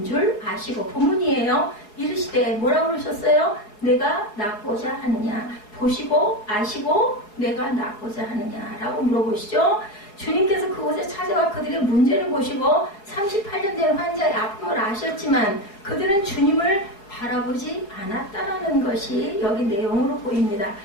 줄 아시고, 본문이에요. 이르시되 뭐라고 그러셨어요? 내가 낫고자 하느냐. 보시고 아시고 내가 낫고자 하느냐라고 물어보시죠. 주님께서 그곳에 찾아와 그들의 문제를 보시고 38년 된 환자의 아픔을 아셨지만 그들은 주님을 바라보지 않았다라는 것이 여기 내용으로 보입니다.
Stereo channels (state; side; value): late; right; 4.8 ms